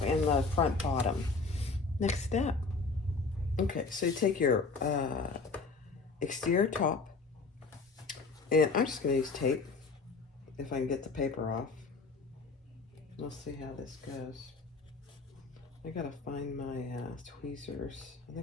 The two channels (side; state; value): right; quieter; 4.2 dB